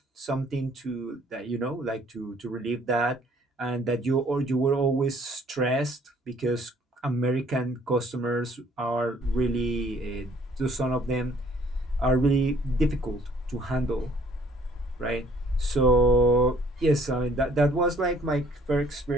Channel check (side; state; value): both; normal; correlation 0.60